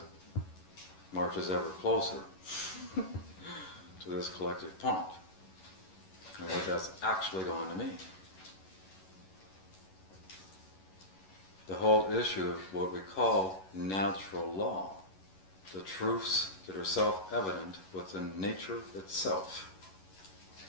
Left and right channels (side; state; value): right; late; 11 ms